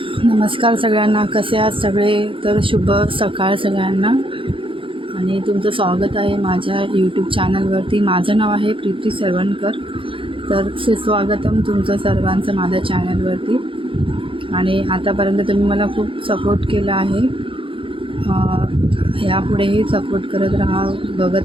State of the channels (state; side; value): late; left; 0.25 ms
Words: नमस्कार सगळ्यांना, कसे आहात सगळे? तर शुभ सकाळ सगळ्यांना आणि तुमचं स्वागत आहे माझ्या यूट्यूब चॅनलवरती. माझं नाव आहे प्रीती सरवणकर. तर सुस्वागतम तुमचं सर्वांचं माझ्या चॅनलवरती. आणि आतापर्यंत तुम्ही मला खूप सपोर्ट केला आहे. यापुढेही सपोर्ट करत राहा, बघत